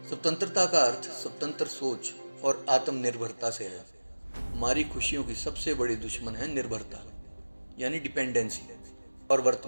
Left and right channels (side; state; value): both; inverted; correlation -1.00